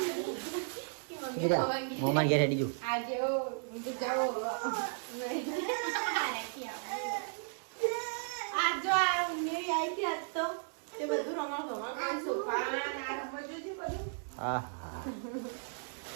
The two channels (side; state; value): left; silent; digital silence